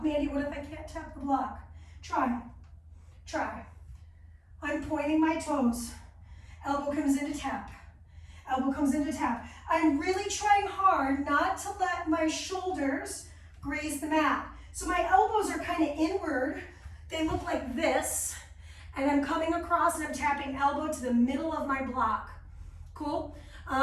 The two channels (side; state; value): both; identical; correlation 1.00